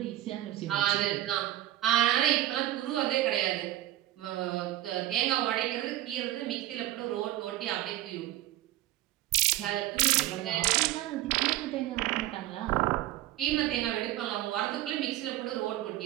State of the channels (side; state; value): left; quieter; 14.6 dB